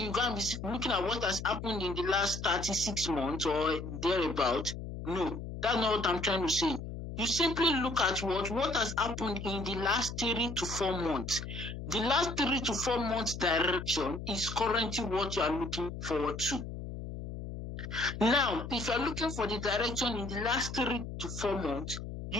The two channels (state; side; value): noise; left; hum, 8 dB below the sound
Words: you go and be looking at what has happened in the last 36 months or thereabout. No, that's not what I'm trying to say. You simply look at what has happened in the last 3 to 4 months. The last 3 to 4 months direction is currently what you are looking forward to. Now, if you're looking for the direction in the last 3 to 4 months,